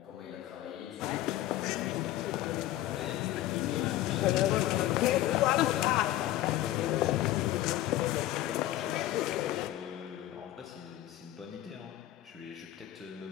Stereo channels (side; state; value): right; quieter; 14.4 dB